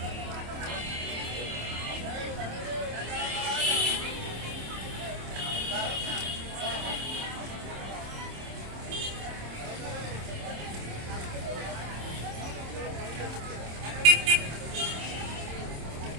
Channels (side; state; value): left; late; 26 ms